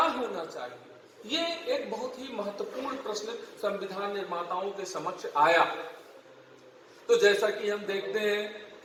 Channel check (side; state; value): both; identical; correlation 1.00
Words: चाहिए, ये एक बहुत ही महत्वपूर्ण प्रश्न संविधान निर्माताओं के समक्ष आया। तो जैसा कि हम देखते हैं